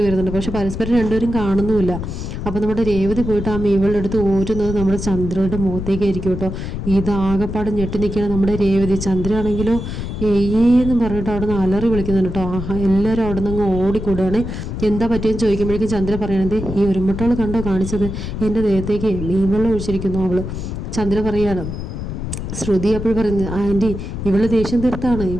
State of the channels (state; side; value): noise; left; rumble, 6 dB below the sound